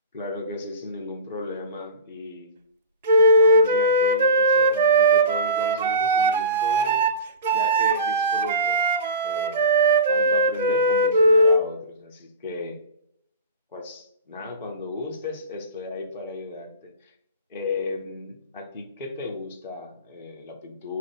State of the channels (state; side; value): inverted; both; correlation -0.34